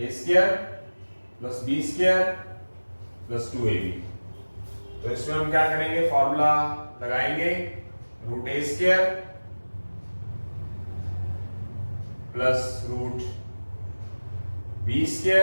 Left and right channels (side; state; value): both; inverted; correlation -1.00